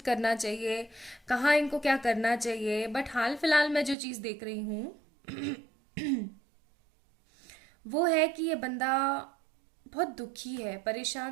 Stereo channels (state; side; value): drops out; left; at 4.0 s